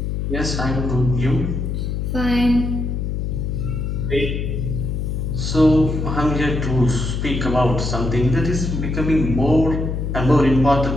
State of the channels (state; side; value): noise; left; hum, 2 dB below the sound